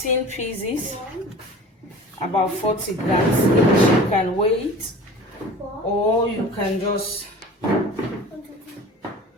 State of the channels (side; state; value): both; normal; correlation 0.41